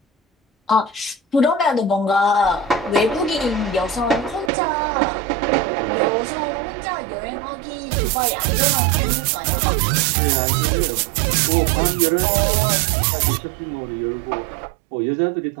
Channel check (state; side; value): drops out; left; at 4.5 s